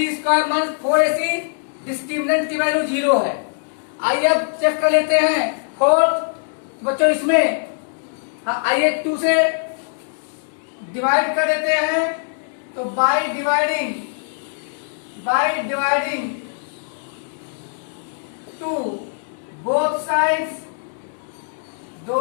square minus 4ac discriminant की वैल्यू 0 है। आइए अब चेक कर लेते हैं 4। बच्चों इसमें आइए 2 से डिवाइड कर देते हैं, तो बाय डिवाइडिंग 2 बोथ साइड्स,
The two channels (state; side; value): silent; right; digital silence